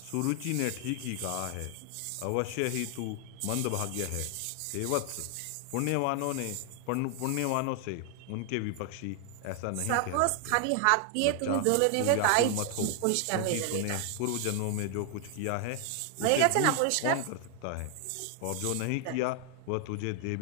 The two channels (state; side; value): different; both; correlation 0.00